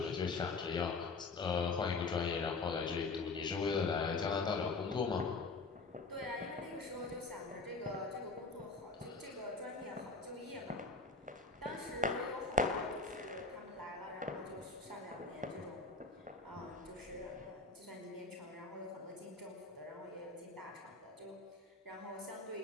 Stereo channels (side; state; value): right; quieter; 3.9 dB